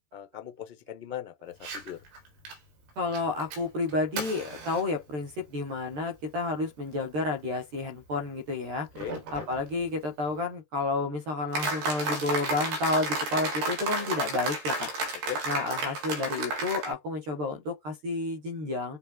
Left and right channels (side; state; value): left; late; 13 ms